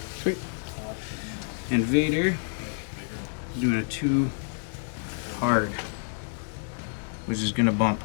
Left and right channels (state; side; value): silent; right; digital silence